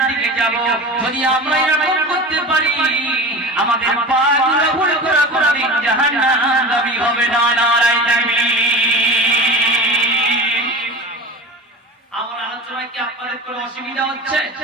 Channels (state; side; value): normal; both; correlation 0.32